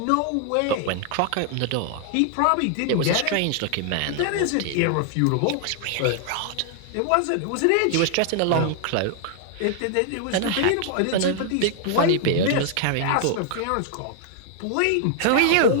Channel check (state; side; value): different; both; correlation 0.00